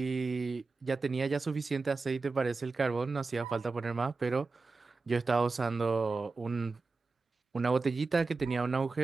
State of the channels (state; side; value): quieter; left; 4.0 dB